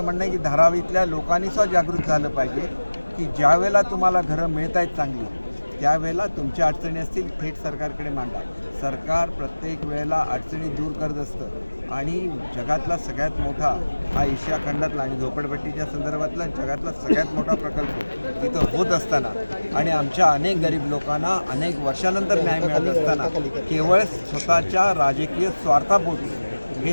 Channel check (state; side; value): inverted; both; correlation -1.00